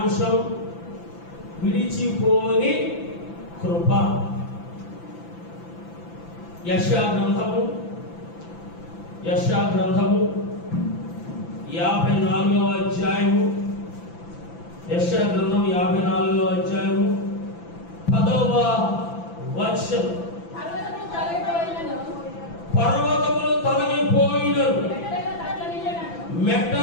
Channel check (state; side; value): late; right; 5.9 ms